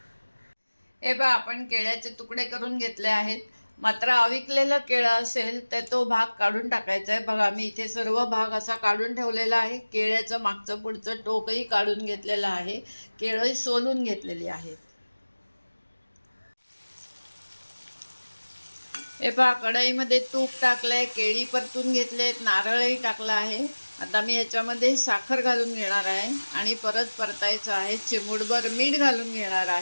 हे बघा, आपण केळ्याचे तुकडे करून घेतले आहेत। मात्र अविकलेलं केळं असेल तर तो भाग काढून टाकायचा आहे। बघा, मी इथे सर्व भाग असा काढून ठेवलेला आहे। केळ्याचं मागचं पुढचं टोकही काढून घेतलेलं आहे, केळंही सोलून घेतलेली आहेत। हे पहा, कढईमध्ये तूप टाकलंय, केळी परतून घेतलेत, नारळही टाकला आहे। आता मी याच्यामध्ये साखर घालून घेणार आहे आणि परत परतायचं आहे। चिमूटभर मीठ घालून घेणार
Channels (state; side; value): inverted; both; correlation -1.00